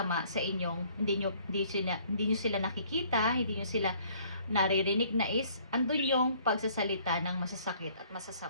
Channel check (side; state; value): both; inverted; correlation -0.59